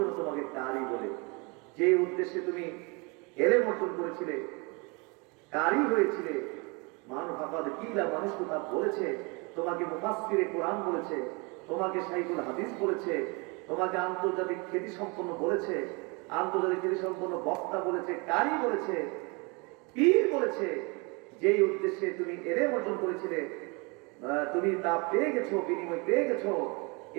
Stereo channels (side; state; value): left; quieter; 29.8 dB